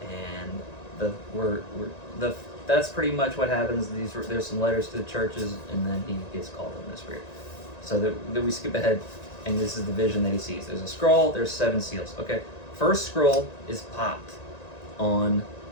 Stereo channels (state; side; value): late; right; 1.9 ms